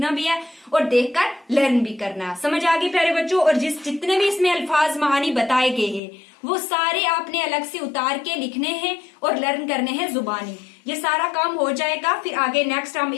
भी है और देखकर लर्न भी करना है। समझ आ गई प्यारे बच्चों। और जितने भी इसमें अल्फाज महानी बताए गए हैं वो सारे आपने अलग से उतार के लिखने हैं और लर्न करने हैं जुबानी। ये सारा काम हो जाएगा, फिर आगे नेक्स्ट हम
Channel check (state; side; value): drops out; right; at 6.0 s